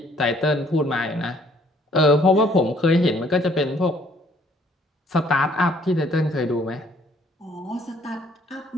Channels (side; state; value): both; normal; correlation 0.62